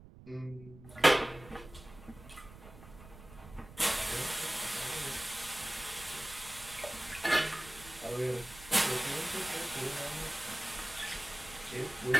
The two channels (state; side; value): noise; right; rumble, 18 dB below the sound